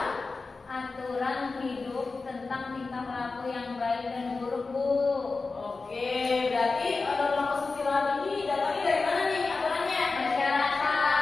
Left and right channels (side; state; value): right; quieter; 4.0 dB